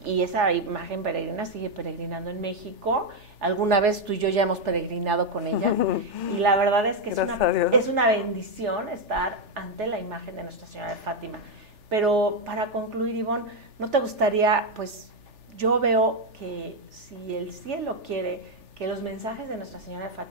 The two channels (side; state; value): left; late; 3.4 ms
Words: esa imagen peregrina sigue peregrinando en México. Alguna vez tú y yo ya hemos peregrinado con ella, y la verdad es que es una bendición estar ante la imagen de Nuestra Señora de Fátima. Pero para concluir, Ivonne, ¿no te gustaría, pues yo veo que si el cielo quiere que los mensajes de Nuestra Señora de